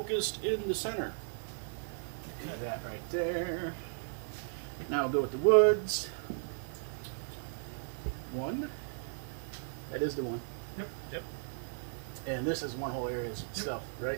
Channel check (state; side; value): silent; left; 54 dB below the other